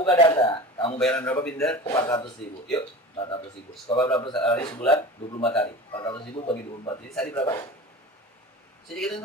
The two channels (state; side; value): normal; both; correlation 0.34